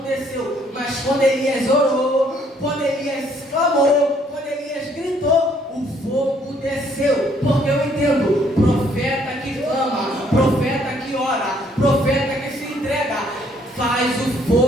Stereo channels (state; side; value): normal; both; correlation 0.65